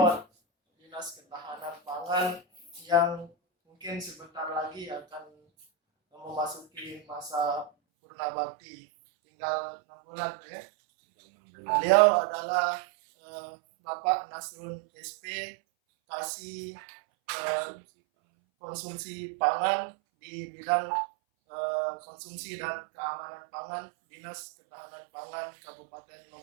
Dinas Ketahanan Pangan yang mungkin sebentar lagi akan memasuki masa purna bakti. Tinggal 6 bulan ya. Beliau adalah Bapak Nasrun SP, Kasih Konsumsi Pangan di bidang konsumsi dan keamanan pangan Dinas Ketahanan Pangan Kabupaten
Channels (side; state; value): left; drops out; at 7.7 s